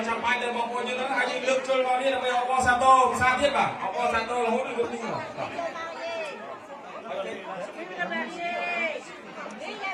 ចាំបាច់ដល់បងប្អូនយើងហ្នឹងហើយយើងលើកចូលមកនេះដើម្បីអបអរសាទរភាសាទៀតបាទអបអរសាទររហូតដល់នេះ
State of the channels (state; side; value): identical; both; correlation 1.00